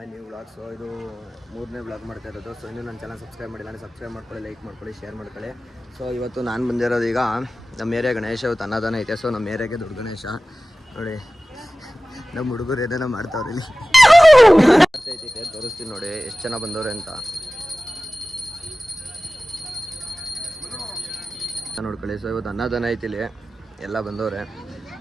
new vlog. So ಇದು 3ನೇ ವ್ಲಾಗ್ ಮಾಡ್ತಾ ಇರೋದು. ಸೊ ಇನ್ನೂ ನನ್ನ ಚಾನಲ್ ಸಬ್ಸ್ಕ್ರೈಬ್ ಮಾಡಿಲ್ಲ ಅಂದರೆ ಸಬ್ಸ್ಕ್ರೈಬ್ ಮಾಡ್ಕೊಳ್ಳಿ, ಲೈಕ್ ಮಾಡ್ಕೊಳ್ಳಿ, ಶೇರ್ ಮಾಡ್ಕೊಳ್ಳಿ. ಸೊ ಇವತ್ತು ನಾನು ಬಂದಿರೋದು ಈಗ ನಮ್ಮ ಏರಿಯಾ ಗಣೇಶ ಇವತ್ತು ಅನ್ನದಾನ ಐತೆ. ಸೊ ನಮ್ಮ ಏರಿಯಾಗೆ ದೊಡ್ಡ ಗಣೇಶ ನೋಡಿ, ನಮ್ಮ ಹುಡುಗರು ಏನೇನೋ ಮಾಡ್ತಾವ್ರೆ ಇಲ್ಲಿ. ತೋರಿಸ್ತೀನಿ ನೋಡಿ ಎಷ್ಟು ಜನ ಬಂದವ್ರೆ ಅಂತ ನೋಡ್ಕೊಳ್ಳಿ. ಸೊ ಇವತ್ತು ಅನ್ನದಾನ ಐತಿ ಇಲ್ಲಿ, ಎಲ್ಲ ಬಂದವ್ರೆ.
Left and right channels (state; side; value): normal; both; correlation 0.97